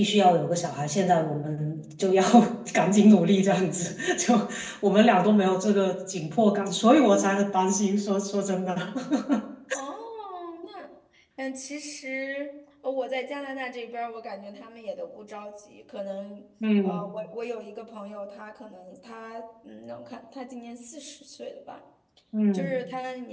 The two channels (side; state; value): both; identical; correlation 1.00